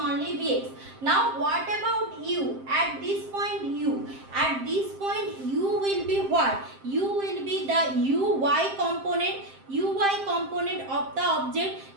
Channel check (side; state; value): left; late; 7.6 ms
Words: vx. Now what about u? At this point u will be what? U will be the uy component of the object,